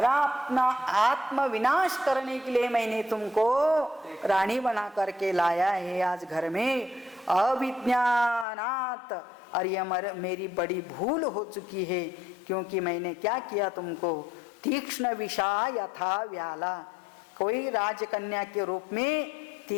अपना आत्म विनाश करने के लिए मैंने तुमको रानी बना करके लाया है आज घर में। अविज्ञानात्, और यह मेरी बड़ी भूल हो चुकी है, क्योंकि मैंने क्या किया तुमको। तीक्ष्ण विषा यथा व्याला, कोई राजकन्या के रूप में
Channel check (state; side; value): drops out; right; at 8.5 s